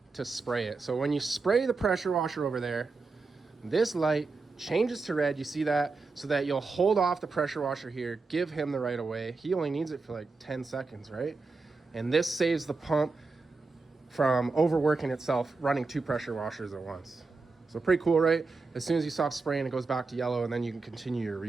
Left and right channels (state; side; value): quieter; left; 4.1 dB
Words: to spray it. So when you spray the pressure washer over there, this light changes to red, you see that, so that you'll hold off the pressure washer here, give him the right of way. He only needs it for like 10 seconds, right? And this saves the pump from overworking itself, running 2 pressure washers at once. So pretty cool, right? As soon as you stop spraying, it goes back to yellow and then you can continue your